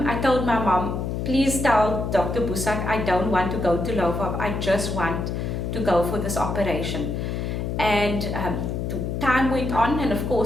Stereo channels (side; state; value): left; noise; hum, 2 dB below the sound